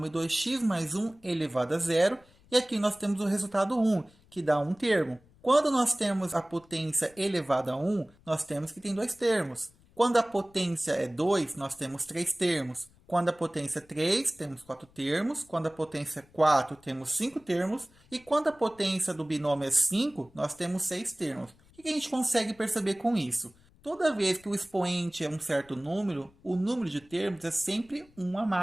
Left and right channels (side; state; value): left; noise; rumble, 29 dB below the sound